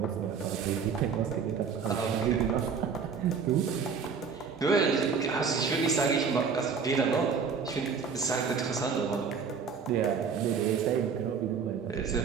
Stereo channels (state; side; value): quieter; left; 5.9 dB